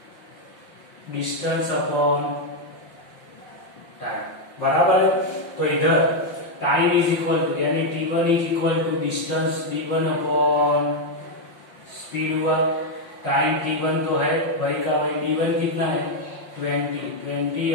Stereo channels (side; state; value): right; late; 5.7 ms